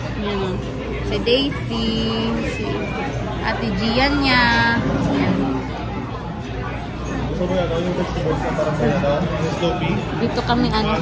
Ayan. Si Daisy, si Ate Gian niya. Ayan. Dito kami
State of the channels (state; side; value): identical; both; correlation 1.00